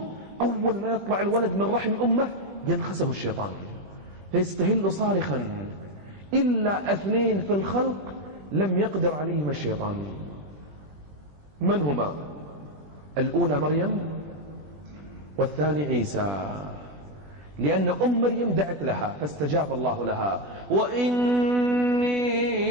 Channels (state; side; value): late; left; 20 ms